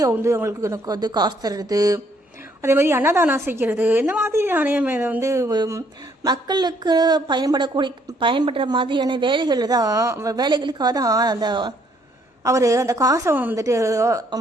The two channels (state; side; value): normal; both; correlation 0.67